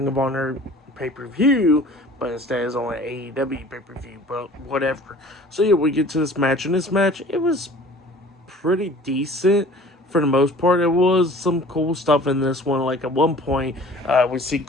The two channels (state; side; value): normal; both; correlation 0.47